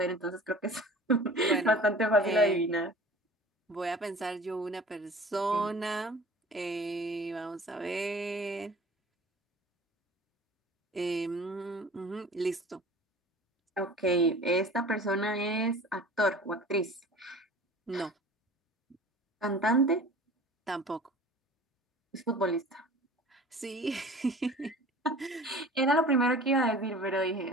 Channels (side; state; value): both; normal; correlation 0.43